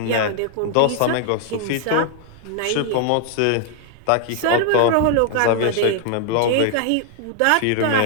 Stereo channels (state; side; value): different; both; correlation 0.00